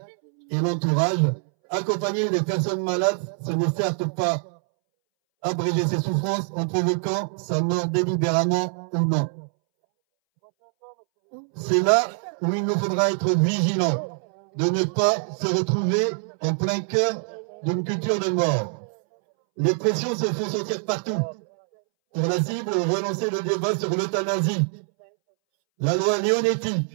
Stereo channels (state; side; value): silent; left; 62 dB below the other